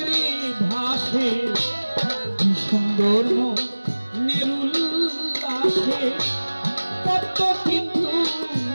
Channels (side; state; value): both; inverted; correlation -1.00